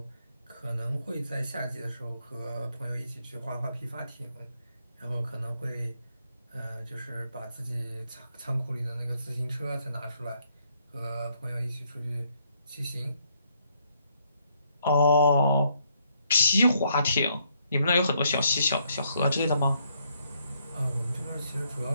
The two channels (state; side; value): inverted; both; correlation -0.72